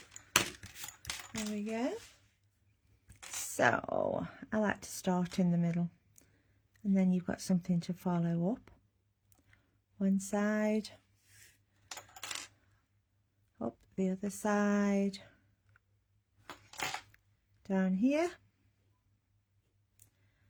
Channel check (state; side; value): identical; both; correlation 1.00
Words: There we go. So I like to start in the middle, and then you've got something to follow up. One side, up the other side, down here,